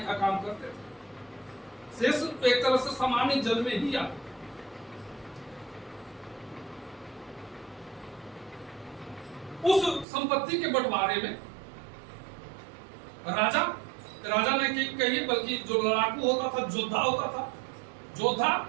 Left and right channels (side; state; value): left; drops out; at 10.1 s